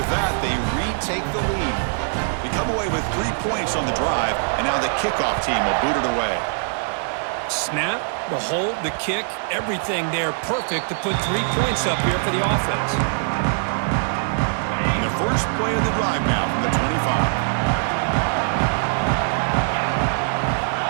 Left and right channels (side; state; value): left; silent; 64 dB below the other